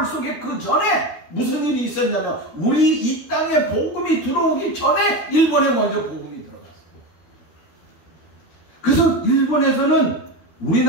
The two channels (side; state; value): right; late; 12 ms